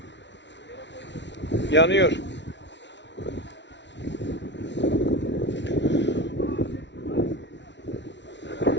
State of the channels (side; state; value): right; late; 0.51 ms